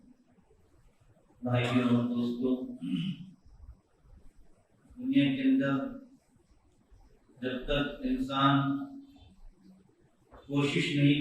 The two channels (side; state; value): both; identical; correlation 1.00